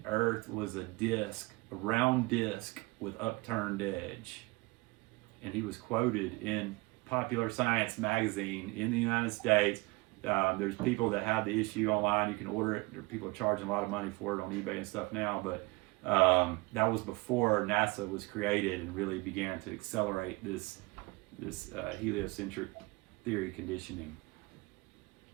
Earth was a round disc with upturned edge. And he was quoted in Popular Science magazine in the United States. There's people that have the issue online. You can order it. There are people charging a lot of money for it on eBay and stuff now. But that was before NASA was created and really began to accelerate this heliocentric theory conditioning.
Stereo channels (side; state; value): left; quieter; 24.6 dB